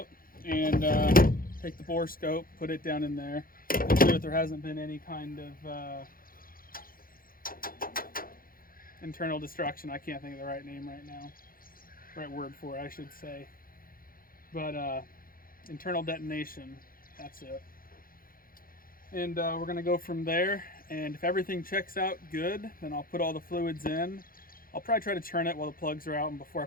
and take the bore scope, put it down in there, make sure that there hasn't been any kind of internal destruction. I can't think of the right name right now. Right word for it, I should say. But internal detonation, that's it. And we're gonna go from there, and if everything checks out good, then I'll put all the fluids in. I'll probably try to turn it while the plugs are out and before I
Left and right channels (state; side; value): late; right; 0.42 ms